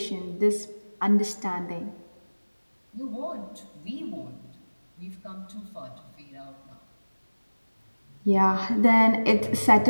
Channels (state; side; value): inverted; both; correlation -1.00